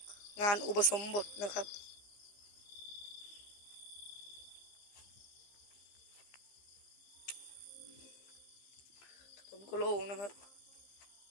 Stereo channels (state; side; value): late; right; 15 ms